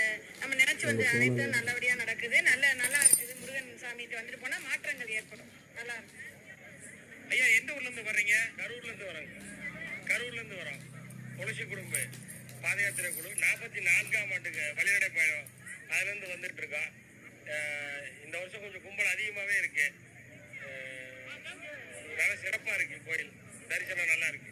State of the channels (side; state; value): both; identical; correlation 1.00